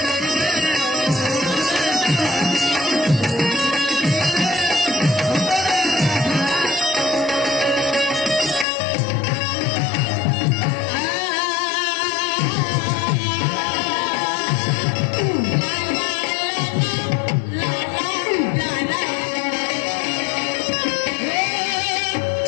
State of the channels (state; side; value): drops out; right; at 8.7 s